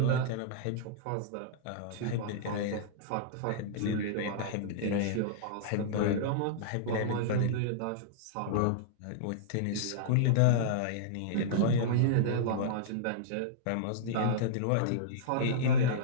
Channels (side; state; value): both; different; correlation -0.02